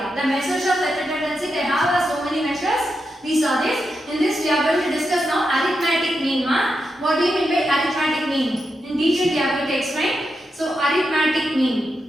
The measures of central tendency, they have so many measures. We saw this. In this, we are going to discuss now arithmetic mean. What do you mean by arithmetic mean? In detail, we are going to explain. So, arithmetic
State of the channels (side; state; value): both; normal; correlation 0.86